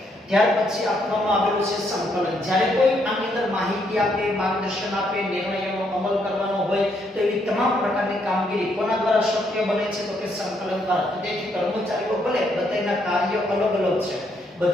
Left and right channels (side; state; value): both; normal; correlation 0.74